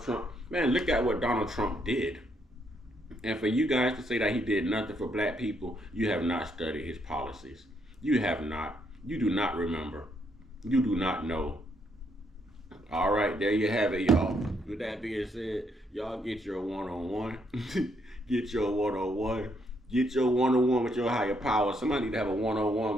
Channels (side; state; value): both; normal; correlation 0.74